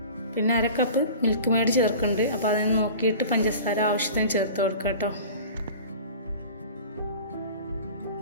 പിന്നെ 1/2 കപ്പ് മിൽക്ക് മെയ്ഡ് ചേർക്കുന്നുണ്ട്. അപ്പോൾ അതിന് നോക്കിയിട്ട് പഞ്ചസാര ആവശ്യത്തിന് ചേർത്ത് കൊടുക്കുക കേട്ടോ.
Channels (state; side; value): inverted; both; correlation -0.39